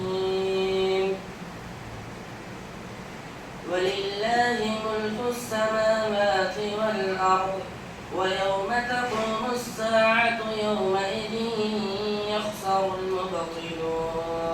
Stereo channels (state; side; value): identical; both; correlation 1.00